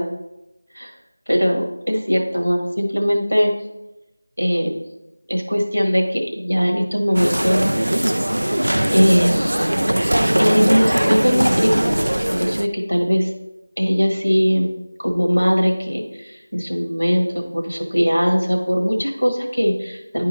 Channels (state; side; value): inverted; both; correlation -0.99